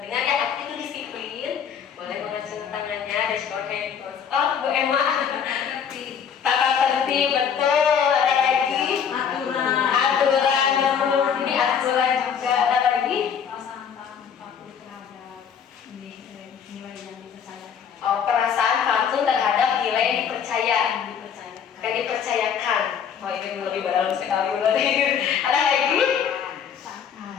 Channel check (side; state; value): right; quieter; 7.7 dB